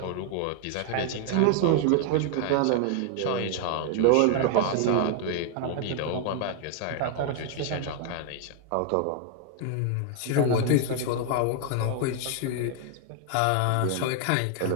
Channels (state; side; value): different; both; correlation 0.00